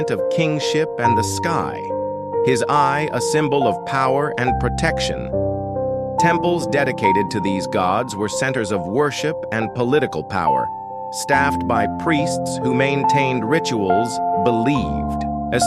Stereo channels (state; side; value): identical; both; correlation 1.00